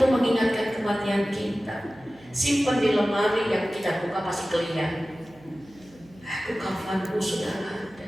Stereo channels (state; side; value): noise; right; hum, 26 dB below the sound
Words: mengingatkan kematian kita. Simpan di lemari, yang kita buka pasti kelihatan. Aku kafanku sudah ada.